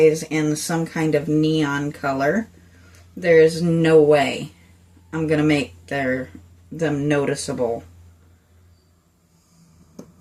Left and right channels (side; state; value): both; identical; correlation 1.00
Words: in some kind of neon color, there's no way I'm going to make them noticeable.